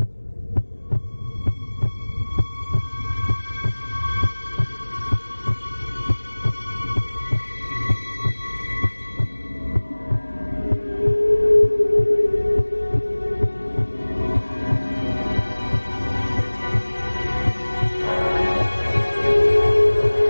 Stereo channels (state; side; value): inverted; both; correlation -1.00